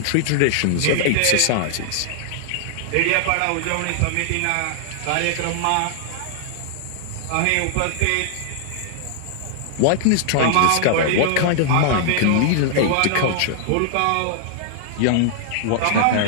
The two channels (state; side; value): different; both; correlation -0.01